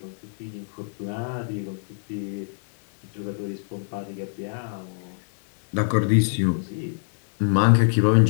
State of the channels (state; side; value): silent; right; digital silence